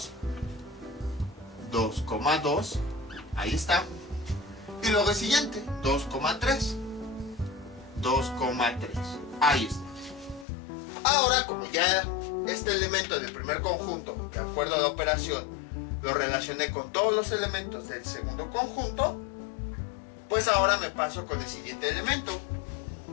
2, 2, ahí está, y luego el siguiente, 2, 3, 2, 3, ahí está. Ahora, como ya este elemento del primer conjunto, de acuerdo a la operación, lo relacioné con todos los elementos del segundo conjunto, pues ahora me paso con el siguiente elemento,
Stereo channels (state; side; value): drops out; right; at 10.5 s